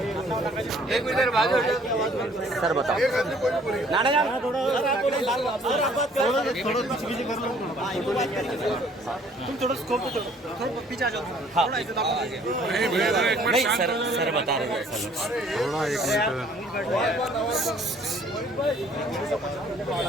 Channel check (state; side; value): normal; both; correlation 0.58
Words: एक मिनट बाद सर बताओ नाना जान थोड़ा पीछे कर लो तुम थोड़ा स्कोप थोड़ा पीछे आ जाओ नहीं सर बता रहे हैं सर थोड़ा एक